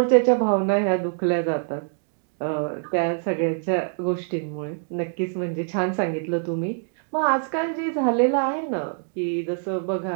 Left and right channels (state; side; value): silent; left; 62 dB below the other